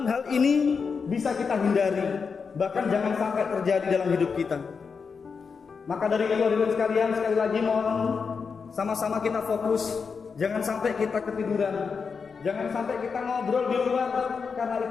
hal ini bisa kita hindari, bahkan jangan sampai terjadi dalam hidup kita. Maka dari itu hadirin sekalian, sekali lagi mohon sama-sama kita fokus. Jangan sampai kita ketiduran. Jangan sampai kita ngobrol di luar, karena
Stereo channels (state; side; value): quieter; right; 5.5 dB